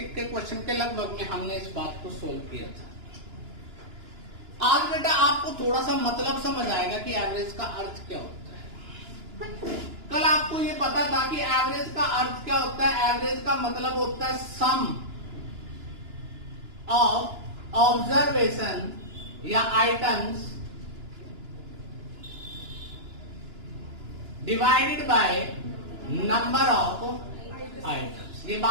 के क्वेश्चन के लगभग में हमने इस बात को सोल्व किया था। आज बेटा आपको थोड़ा सा मतलब समझ आएगा कि एवरेज का अर्थ क्या होता है। कल आपको ये पता था कि एवरेज का अर्थ क्या होता है। एवरेज का मतलब होता है सम ऑफ ऑब्जर्वेशन या items divided by number of items. ये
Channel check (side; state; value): left; late; 2.9 ms